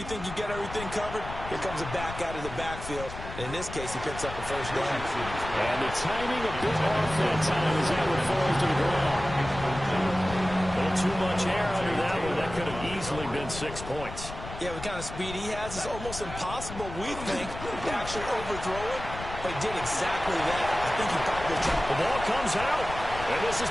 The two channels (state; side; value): noise; left; rumble, 10 dB below the sound